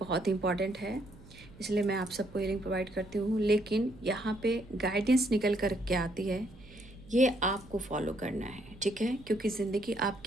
इंपॉर्टेंट है, इसलिए मैं आप सबको हीलिंग प्रोवाइड करती हूँ। लेकिन यहाँ पे गाइडेंस निकल कर के आती है, ये आपको फॉलो करना है। ठीक है, क्योंकि ज़िंदगी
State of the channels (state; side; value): noise; right; hum, 21 dB below the sound